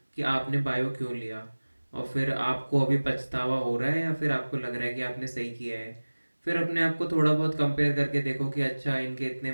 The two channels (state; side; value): inverted; both; correlation -1.00